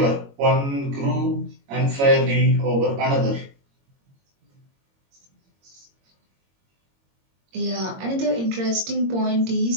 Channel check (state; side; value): late; left; 22 ms